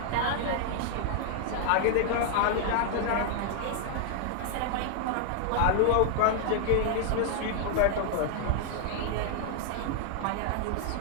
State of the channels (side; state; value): both; different; correlation 0.00